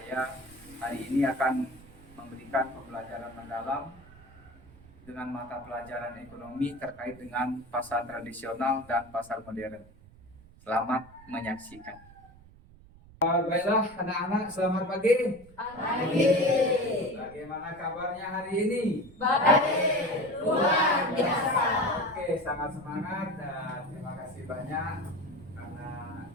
hari ini akan memberikan pembelajaran mendalam dengan mata pelajaran ekonomi terkait dengan pasar tradisional dan pasar modern. Selamat menyaksikan. Baiklah anak-anak, selamat pagi. Pagi. Bagaimana kabarnya hari ini? Baik, luar biasa. Oke, sangat semangat dan terima kasih banyak karena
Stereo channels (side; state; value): right; noise; rumble, 23 dB below the sound